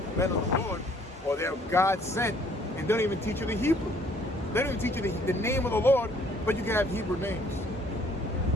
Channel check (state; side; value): normal; both; correlation 0.61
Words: men of the Lord, or they're God sent, and don't even teach you the Hebrew. They don't even teach you the name of the Lord, but you can have Hebrew names.